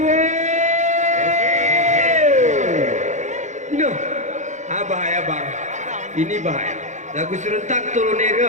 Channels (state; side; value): late; left; 0.35 ms